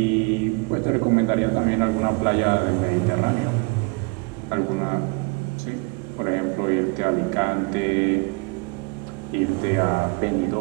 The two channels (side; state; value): left; quieter; 30.3 dB